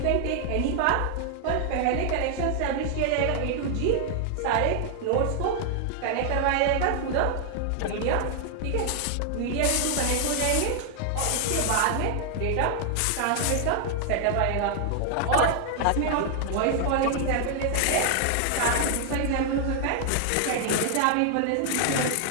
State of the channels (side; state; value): both; different; correlation 0.00